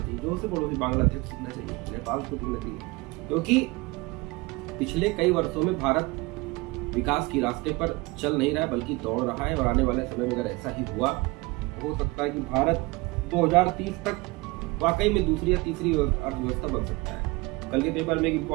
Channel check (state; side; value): quieter; left; 23.8 dB